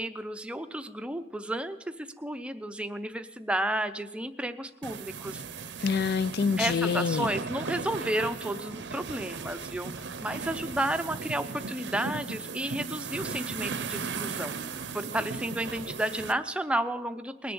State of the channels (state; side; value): normal; both; correlation 0.64